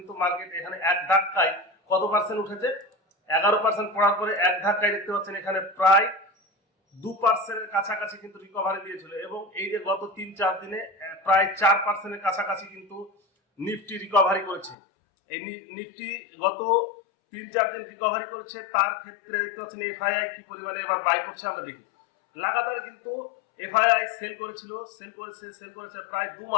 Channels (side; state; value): right; drops out; at 14.8 s